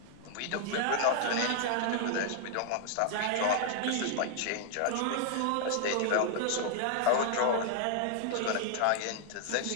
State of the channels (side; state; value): both; different; correlation 0.00